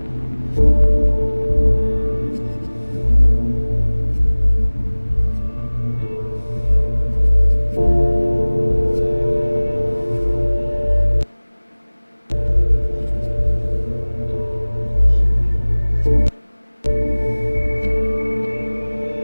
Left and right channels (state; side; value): inverted; both; correlation -1.00